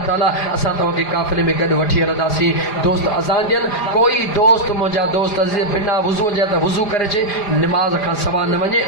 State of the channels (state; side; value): late; right; 4.9 ms